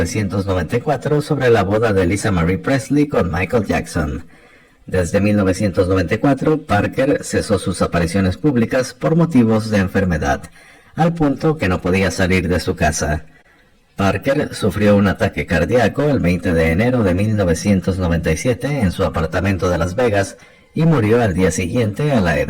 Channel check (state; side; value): identical; both; correlation 1.00